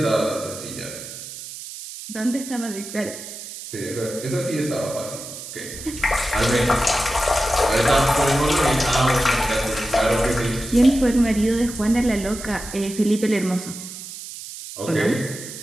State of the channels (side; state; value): right; noise; hiss, 11 dB below the sound